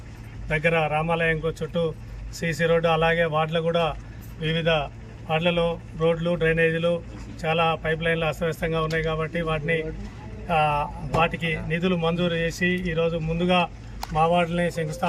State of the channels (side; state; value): both; identical; correlation 1.00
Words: దగ్గర రామాలయంకు చుట్టూ సీసీ రోడ్డు, అలాగే వార్డులు కూడా వివిధ వార్డులలో రోడ్లు, డ్రైనేజీలు, చాలా పైప్ లైన్లు అస్తవ్యస్తంగా ఉన్నాయి. కాబట్టి వాటికి నిధులు మంజూరు చేసి ఈరోజు ముందుగా మా వార్డుని